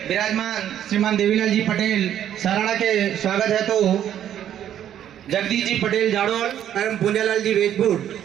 विराजमान श्रीमान देवीलाल जी पटेल सराड़ा के स्वागत है तो जगदीश जी पटेल जाड़ोल एवं पुंजालाल जी वेजपुर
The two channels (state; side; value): quieter; left; 10.6 dB